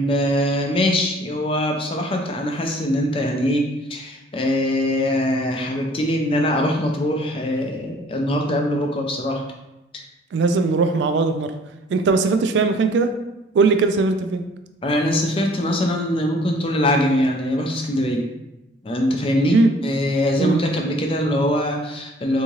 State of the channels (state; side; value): normal; both; correlation 0.54